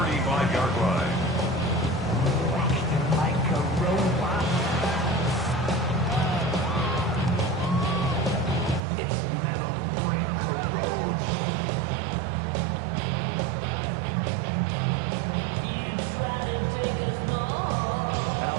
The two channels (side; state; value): left; drops out; at 8.8 s